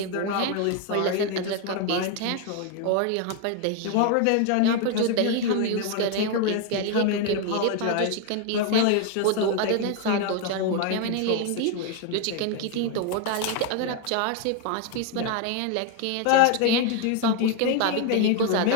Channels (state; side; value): different; both; correlation 0.01